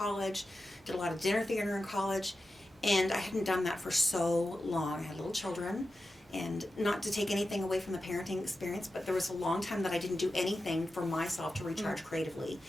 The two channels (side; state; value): both; normal; correlation 0.92